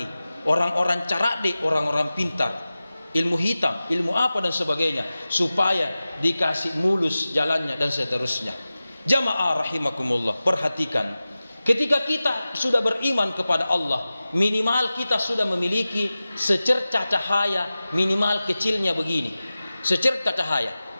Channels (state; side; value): inverted; both; correlation -0.96